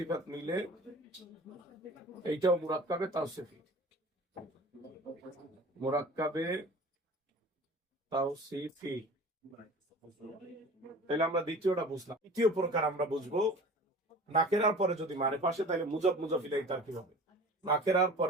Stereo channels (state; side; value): normal; both; correlation 0.41